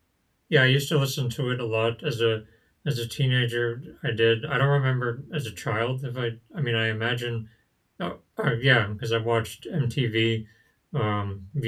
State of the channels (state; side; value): identical; both; correlation 1.00